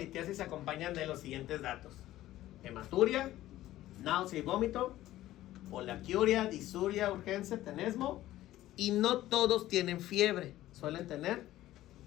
se acompañan de los siguientes datos: hematuria, náusea y vómito, poliaquiuria, disuria, urgencia, tenesmo, y no todos tienen fiebre, suelen tener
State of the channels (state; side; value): quieter; right; 14.9 dB